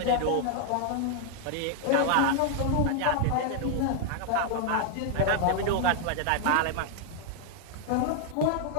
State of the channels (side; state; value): both; different; correlation 0.00